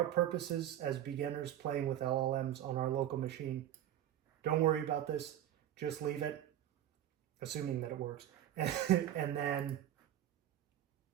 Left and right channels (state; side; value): quieter; left; 11.6 dB